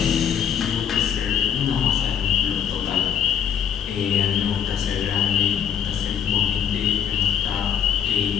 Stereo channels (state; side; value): quieter; right; 8.5 dB